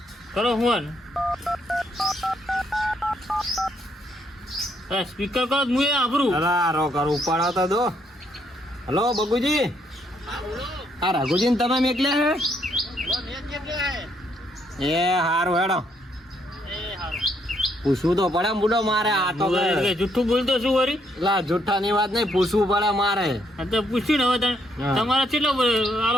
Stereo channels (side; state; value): both; normal; correlation 0.72